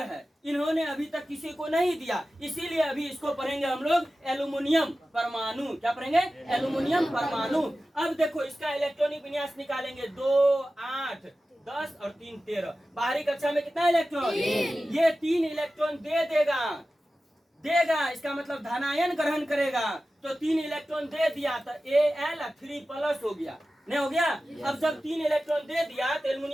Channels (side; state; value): both; normal; correlation 0.95